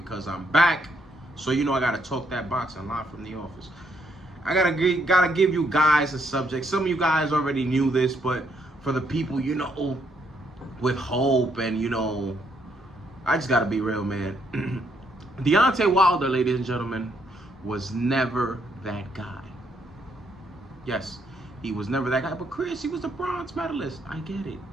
I'm back. So you know I gotta talk that boxing live from the office. I gotta give you guys a subject. Some of you guys already knew this, but for the people, you know, with hope and I just gotta be real, man. Deontay Wilder, ladies and gentlemen, was never that guy. Yes, he was never that guy. But Chris, he was the bronze medalist. I get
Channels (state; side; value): normal; both; correlation 0.73